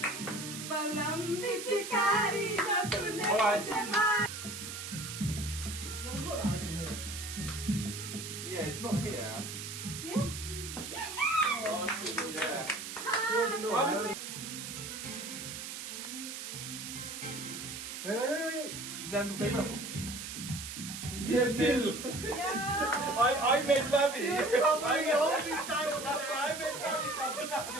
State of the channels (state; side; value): noise; right; hiss, 8 dB below the sound